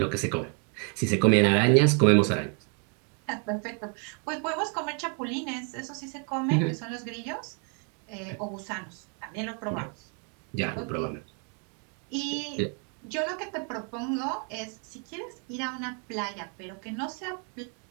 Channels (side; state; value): left; quieter; 39.6 dB